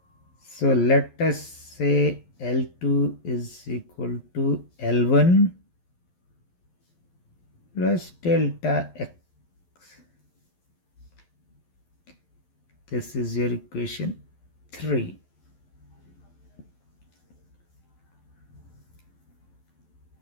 so let us say L2 is equal to L1 plus delta x. This is your equation 3.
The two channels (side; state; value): right; late; 11 ms